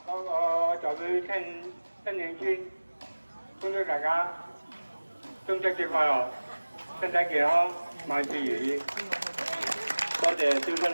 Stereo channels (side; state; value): both; inverted; correlation -1.00